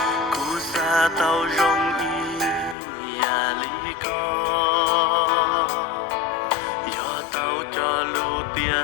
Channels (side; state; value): right; drops out; at 2.8 s